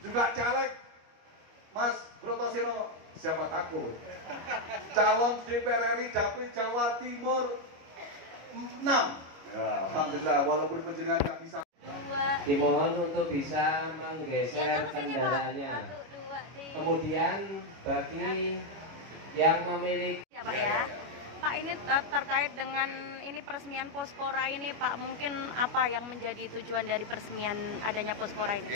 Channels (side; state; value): left; late; 25 ms